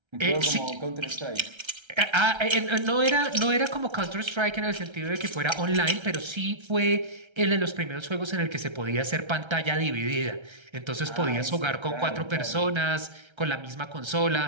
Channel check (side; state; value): left; late; 1.3 ms